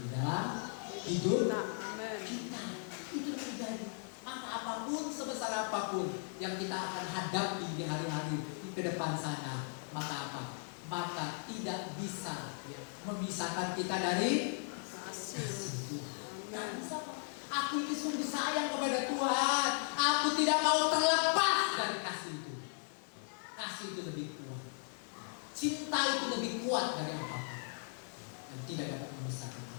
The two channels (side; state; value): right; silent; 53 dB below the other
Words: di dalam hidup Amin. kita. Itu terjadi. Maka apapun, sebesar apapun yang kita akan hadapi di hari-hari di ke depan sana, maka apa? Maka tidak bisa ya, memisahkan kita dari Kasih. Tuhan. Nggak Amin. bisa, Pak. Aku ini sungguh sayang kepada Tuhan. Aku tidak mau terlepas dari kasih itu. Kasih itu lebih kuat. Cinta itu lebih kuat dari apapun. Dan tidak dapat memisahkan